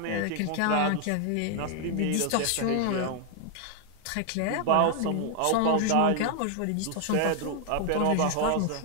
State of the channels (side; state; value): both; different; correlation 0.00